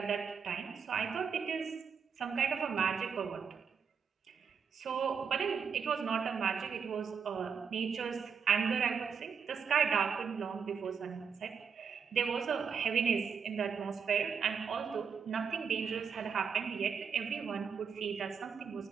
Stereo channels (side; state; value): left; quieter; 6.4 dB